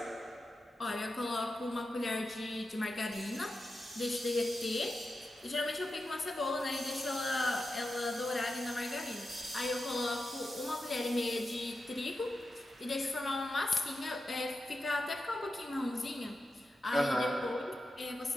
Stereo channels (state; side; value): normal; both; correlation 0.90